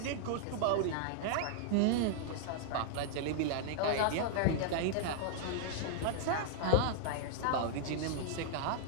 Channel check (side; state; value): both; different; correlation -0.01